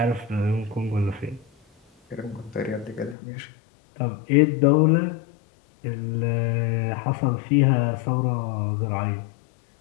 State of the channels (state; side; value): drops out; right; at 3.2 s